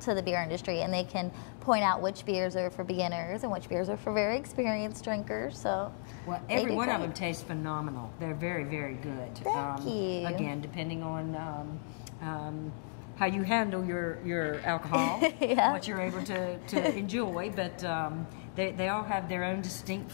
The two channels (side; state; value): right; silent; digital silence